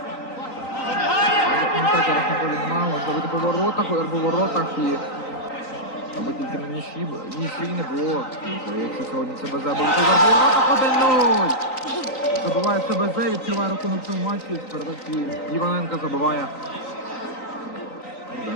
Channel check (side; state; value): right; late; 3.9 ms